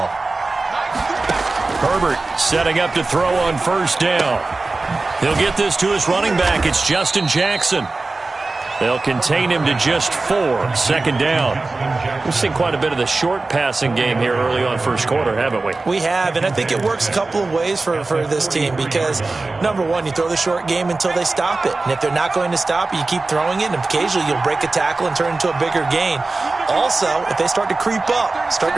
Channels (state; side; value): quieter; left; 3.5 dB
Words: Herbert setting up to throw on first down. He'll get this to his running back. It's Justin Jackson. They'll contain him to just 4. Second down. We've seen quite a bit of the short passing game here early on first quarter, haven't we? We have, and I think it works a couple of ways for this team because, number one, you throw the short game until they stop it. And if they're not going to stop it, you keep throwing it, and occasionally you'll break a tackle and turn it into a bigger gain. Also, if they start to creep up, start